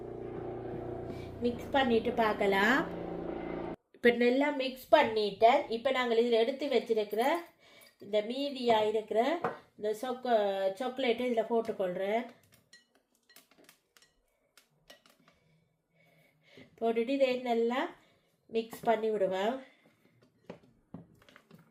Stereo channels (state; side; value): identical; both; correlation 1.00